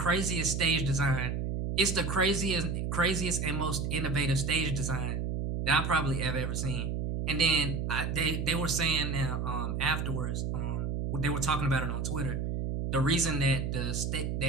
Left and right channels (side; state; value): right; noise; hum, 1 dB below the sound